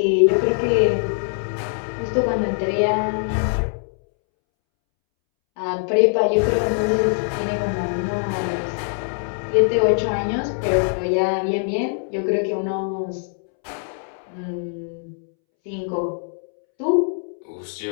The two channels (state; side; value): silent; right; 64 dB below the other